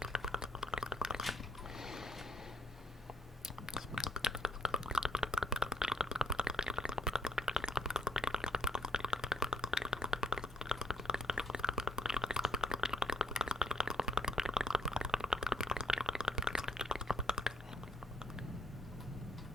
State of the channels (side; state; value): both; normal; correlation 0.68